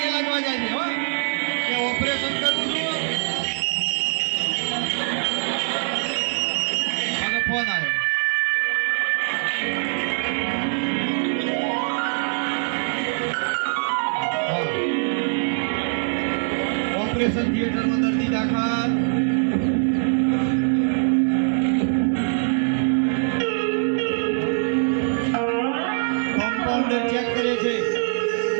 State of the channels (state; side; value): silent; left; digital silence